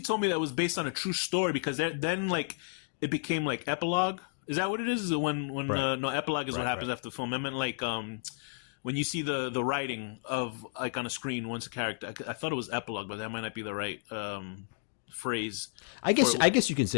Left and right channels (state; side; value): silent; right; digital silence